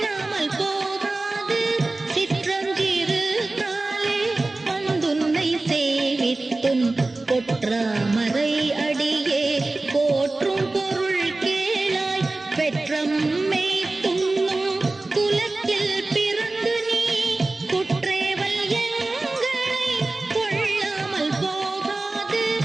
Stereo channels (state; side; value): quieter; left; 3.1 dB